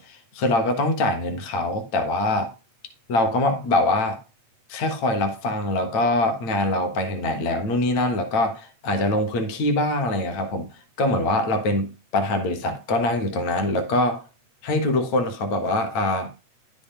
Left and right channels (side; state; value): right; late; 8.8 ms